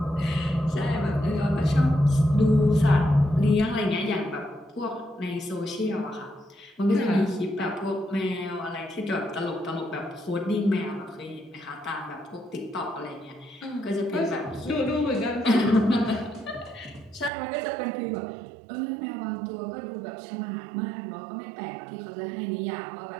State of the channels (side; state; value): left; drops out; at 17.3 s